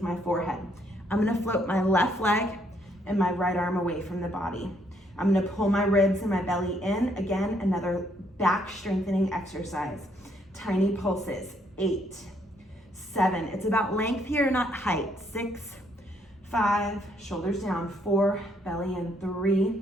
my forehead. I'm gonna float my left leg and my right arm away from the body. I'm gonna pull my ribs and my belly in. Again, another back strengthening exercise. Tiny pulses, 8, 7. It's about length here, not height. 6, 5, shoulders down, 4, belly in,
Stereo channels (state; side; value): normal; both; correlation 0.70